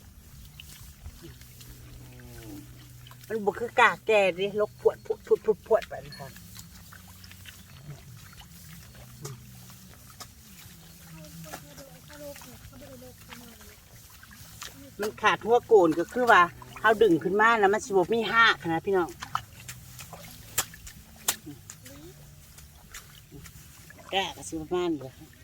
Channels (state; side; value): identical; both; correlation 1.00